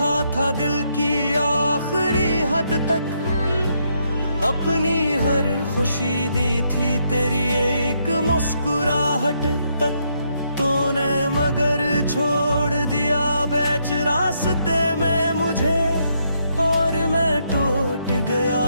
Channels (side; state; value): both; inverted; correlation -0.76